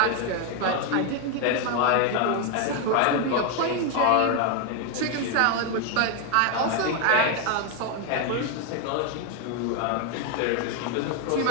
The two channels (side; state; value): both; different; correlation 0.01